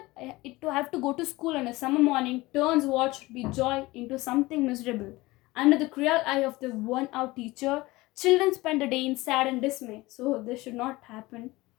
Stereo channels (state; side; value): quieter; right; 20.4 dB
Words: it to have to go to school on a summer morning turns what should be joy into something miserable. Under the cruel eye of the worn-out teacher, children spend a day in sad and dismay. So this should not happen